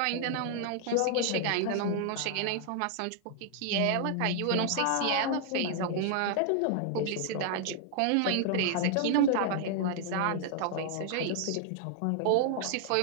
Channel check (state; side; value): different; both; correlation 0.00